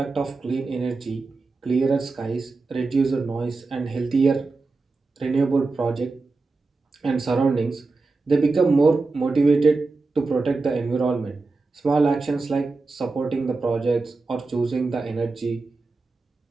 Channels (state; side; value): quieter; left; 3.7 dB